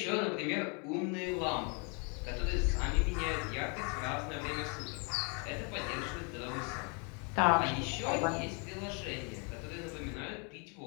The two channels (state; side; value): quieter; right; 35.6 dB